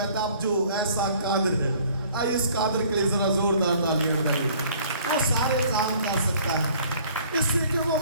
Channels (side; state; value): both; inverted; correlation -0.55